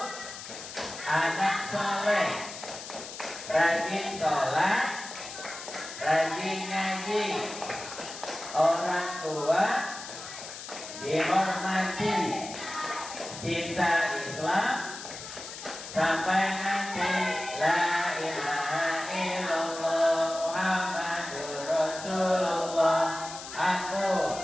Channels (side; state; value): left; noise; hiss, 11 dB below the sound